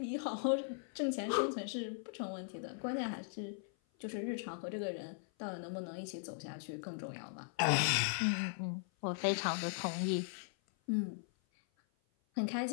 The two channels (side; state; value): right; silent; 52 dB below the other